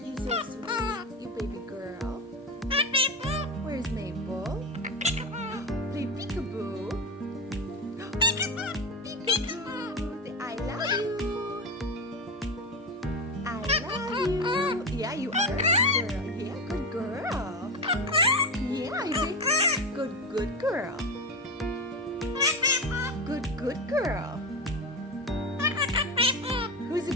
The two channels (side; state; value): both; normal; correlation 0.18